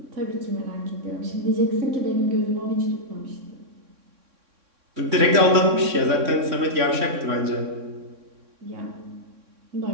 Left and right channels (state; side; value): late; left; 3.6 ms